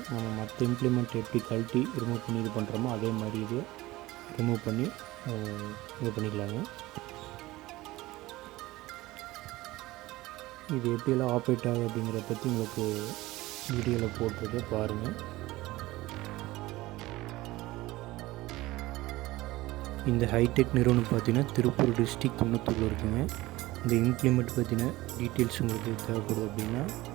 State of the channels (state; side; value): quieter; left; 18.7 dB